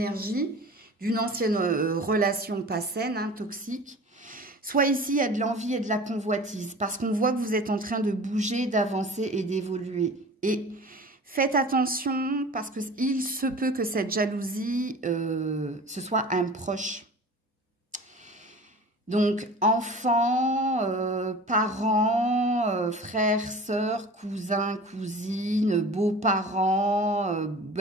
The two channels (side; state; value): both; normal; correlation 0.39